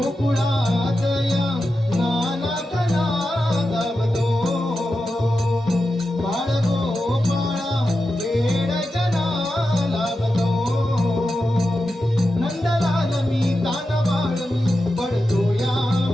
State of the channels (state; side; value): normal; both; correlation 0.90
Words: या नानात नादावतो बाळ गोपाळा वेड जना लावतो नंदलाल मी कानबाळ मी पडतो या